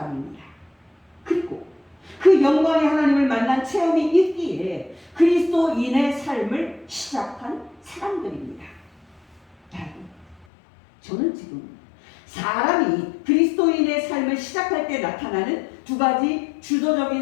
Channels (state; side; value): drops out; right; at 10.5 s